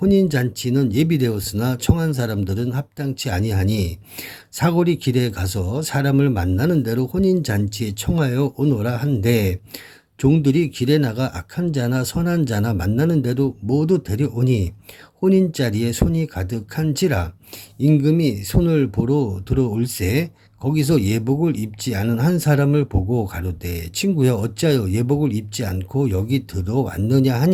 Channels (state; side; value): identical; both; correlation 1.00